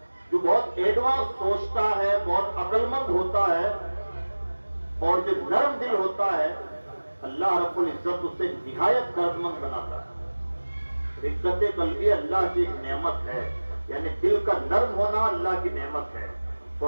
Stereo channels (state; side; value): inverted; both; correlation -1.00